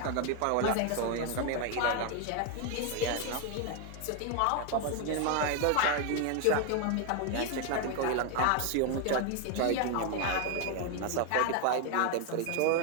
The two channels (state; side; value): different; both; correlation 0.01